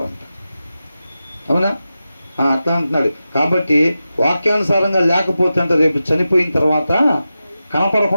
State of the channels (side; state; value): both; inverted; correlation -0.92